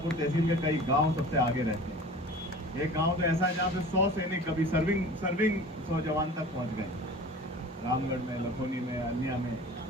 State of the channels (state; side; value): normal; both; correlation 0.41